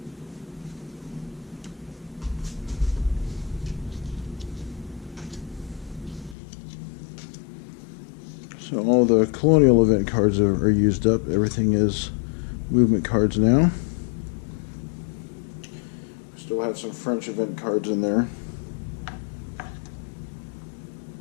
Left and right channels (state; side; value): drops out; right; at 6.4 s